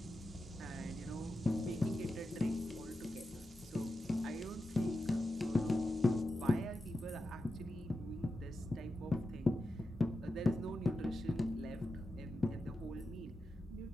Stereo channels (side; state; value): both; normal; correlation 0.90